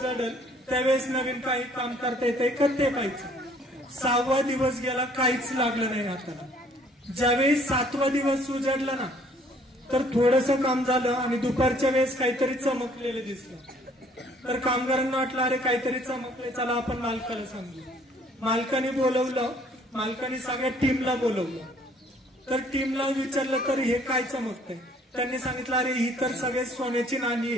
त्यावेळेस नवीन काही काम करता येते का ते पाहायचं. 6वा दिवस गेला, काहीच लागलं नाही हाताला. ज्यावेळेस 7वा दिवस उजाडला ना, तर थोडस काम झालं आणि दुपारच्या वेळेस काहीतरी चमकलेलं दिसलं. तर कामगारांना वाटलं, अरे काहीतरी चमकले, चला आपण मालकाला सांगू. मालकाने बोलवलं, मालकाने सगळ्या टीमला बोलवलं. तर टीमला विचारलं, तर हे काय चमकतंय? त्यांनी सांगितलं, अरे ही तर सगळे सोन्याची नाणी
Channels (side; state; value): both; normal; correlation 0.60